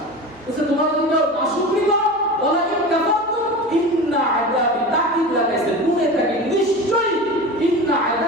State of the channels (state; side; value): noise; right; hum, 28 dB below the sound